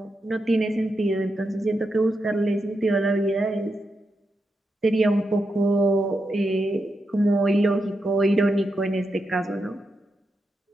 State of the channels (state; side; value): normal; both; correlation 0.86